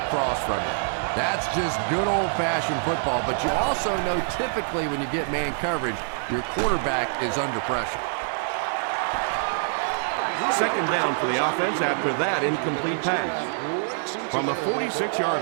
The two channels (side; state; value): left; silent; 55 dB below the other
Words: across from you. That's just good old-fashioned football, but you also know typically when you get man coverage, your quarterback is under pressure. Second down for the offense after that incomplete pass from the 46-yard